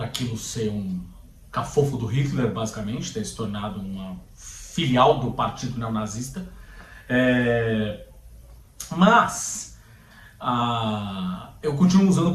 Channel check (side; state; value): both; identical; correlation 1.00